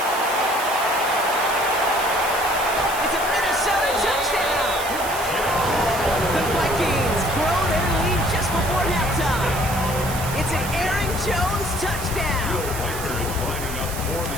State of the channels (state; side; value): noise; right; hiss, 9 dB below the sound